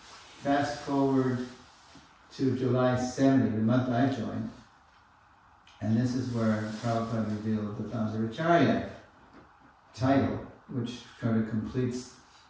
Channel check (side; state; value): both; identical; correlation 1.00